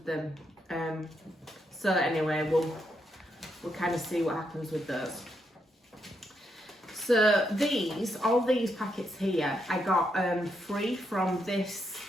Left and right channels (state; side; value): normal; both; correlation 0.79